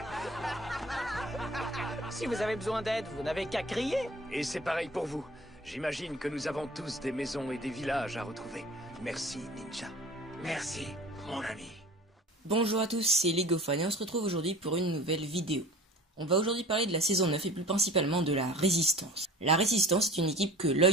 Si vous avez besoin d'aide, vous n'avez qu'à crier. Et c'est pareil pour vous. J'imagine que nous avons tous des maisons et des villages à retrouver. Merci, Ninja. Merci, mon ami. Bonjour à tous, c'est Legofan et on se retrouve aujourd'hui pour une nouvelle vidéo. On va aujourd'hui parler de la saison 9 et plus principalement de la Résistance. La Résistance est une équipe que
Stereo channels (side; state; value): both; normal; correlation 0.43